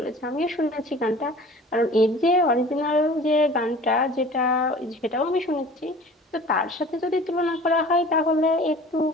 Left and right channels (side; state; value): both; normal; correlation 0.44